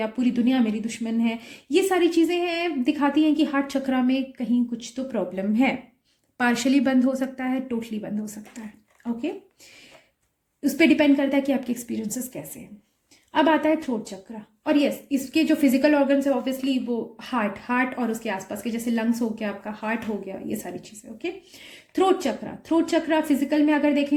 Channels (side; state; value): both; identical; correlation 1.00